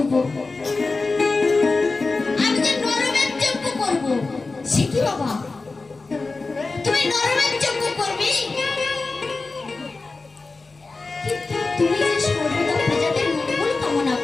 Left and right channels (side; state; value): right; quieter; 3.8 dB